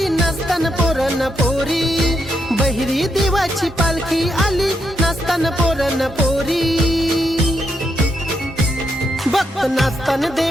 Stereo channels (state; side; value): normal; both; correlation 0.80